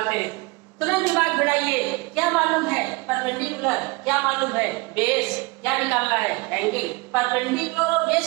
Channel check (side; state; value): left; quieter; 25.5 dB